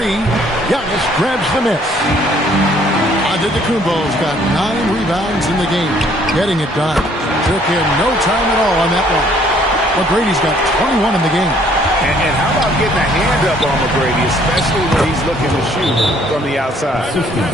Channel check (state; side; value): normal; both; correlation 0.61